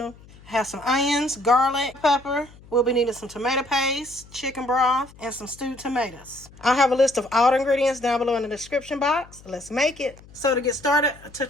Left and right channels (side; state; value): left; noise; hum, 23 dB below the sound